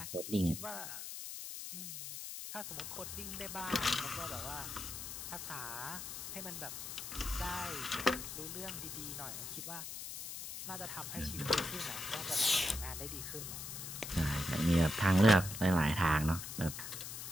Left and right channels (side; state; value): left; noise; hiss, 7 dB below the sound